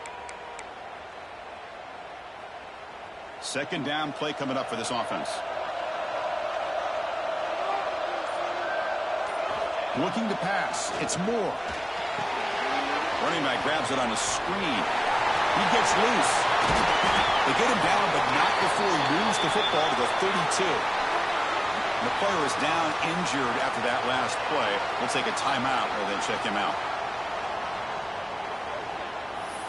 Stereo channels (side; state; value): both; identical; correlation 1.00